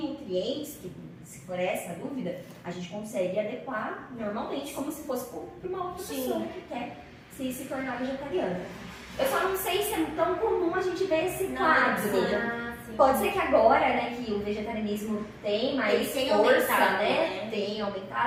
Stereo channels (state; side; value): identical; both; correlation 1.00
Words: nutrientes, se for essa a dúvida, a gente consegue adequar normalmente como se fosse para uma outra pessoa que quer se tornar vegetariana. Eu só não sei se é tão comum a gente ver esse quadro. Ah, sim. Pode ser que agora, né, que o vegetarianismo tem mais Ele tem força, aumentado, né? né? Tem